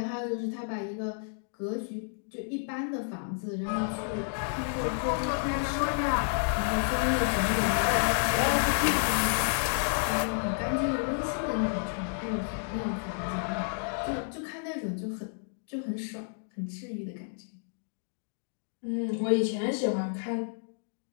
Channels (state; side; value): silent; right; digital silence